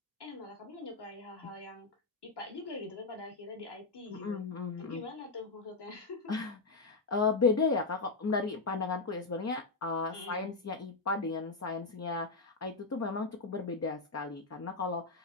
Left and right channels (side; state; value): right; quieter; 3.8 dB